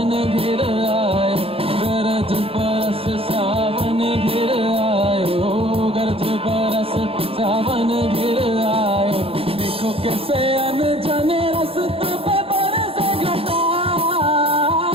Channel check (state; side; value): late; left; 0.27 ms